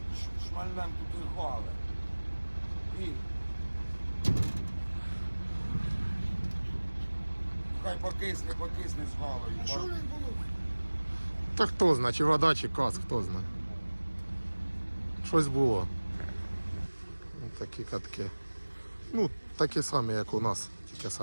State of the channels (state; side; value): inverted; both; correlation -1.00